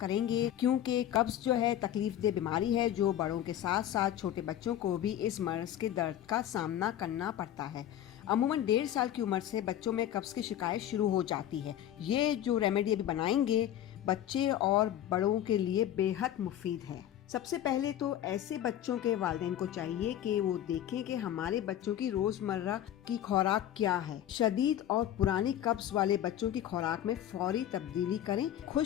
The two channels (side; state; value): right; quieter; 11.5 dB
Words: करेंगे, क्योंकि कब्ज जो है तकलीफ दे बीमारी है जो बड़ों के साथ साथ छोटे बच्चों को भी इस मर्ज के दर्द का सामना करना पड़ता है। अमूमन 1.5 साल की उम्र से बच्चों में कब्ज की शिकायत शुरू हो जाती है। ये जो रेमेडी अभी बनाएंगे बच्चे और बड़ों के लिए बेहद मुफीद है। सबसे पहले तो ऐसे बच्चों के वालिदैन को चाहिए कि वो देखें कि हमारे बच्चों की रोजमर्रा की खुराक क्या है। शदीद और पुरानी कब्ज वाले बच्चों की खुराक में फौरी तब्दीली करें।